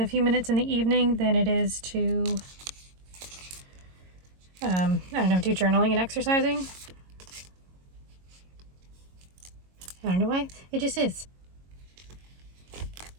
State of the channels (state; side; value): late; left; 22 ms